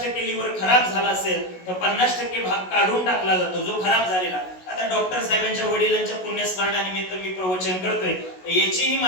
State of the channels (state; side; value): late; right; 16 ms